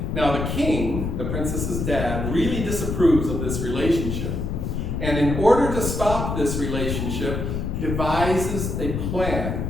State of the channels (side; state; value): left; noise; rumble, 2 dB below the sound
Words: Now the king, the princess's dad, really disapproves of this relationship. And in order to stop this relationship, devises a plan